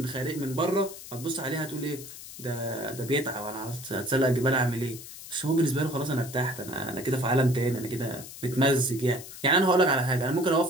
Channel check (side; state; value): left; noise; hiss, 14 dB below the sound